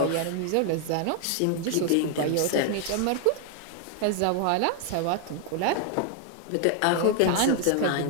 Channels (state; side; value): different; both; correlation 0.00